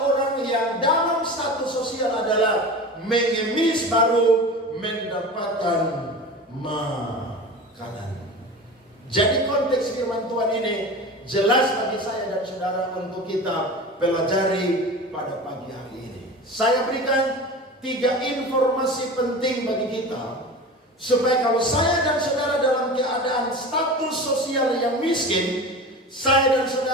orang yang dalam status sosial adalah mengemis baru mendapatkan makanan. Jadi konteks firman Tuhan ini jelas bagi saya dan saudara untuk kita pelajari pada pagi hari ini. Saya berikan 3 informasi penting bagi kita supaya kalau saya dan saudara dalam keadaan status sosial yang miskin, saya dan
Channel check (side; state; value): both; normal; correlation 0.33